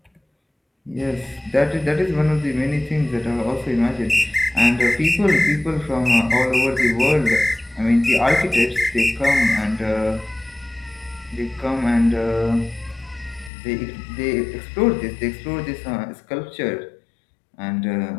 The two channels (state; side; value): drops out; right; at 13.5 s